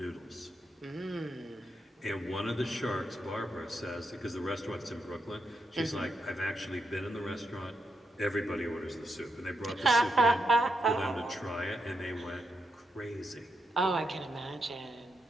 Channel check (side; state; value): both; normal; correlation 0.83